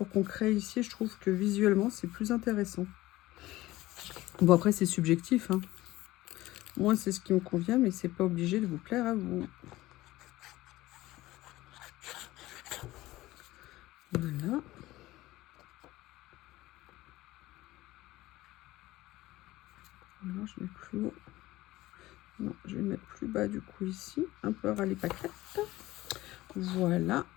qu'on crée ici, je trouve que visuellement, c'est plus intéressant. Bon, après, c'est subjectif, hein. Moi, c'est ce qui me convient, mais c'est pas obligé de vous plaire à vous. Voilà. Alors, je mets plus haut. Non, je vais mettre plus bas, du coup, ici. Un peu à râler paquette. Voilà.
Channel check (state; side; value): quieter; right; 17.5 dB